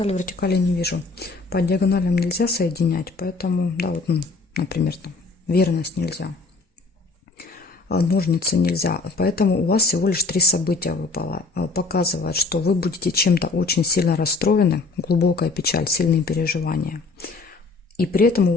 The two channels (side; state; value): right; quieter; 3.9 dB